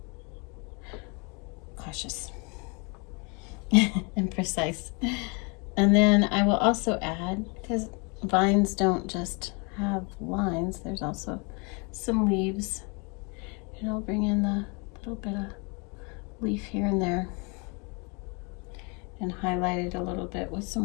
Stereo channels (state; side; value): quieter; right; 32.0 dB